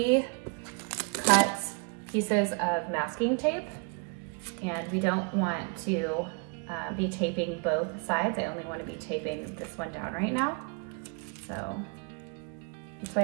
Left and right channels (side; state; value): left; quieter; 35.0 dB